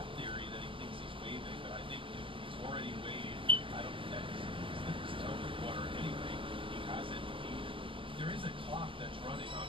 theory that he thinks he's waiving, but I think if he's already waived, I don't think that he's dipped his toe in the water anyway. He hasn't there is a clock that's running on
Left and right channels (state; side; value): late; left; 0.25 ms